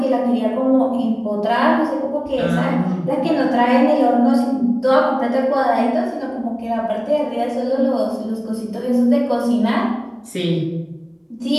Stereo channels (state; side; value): identical; both; correlation 1.00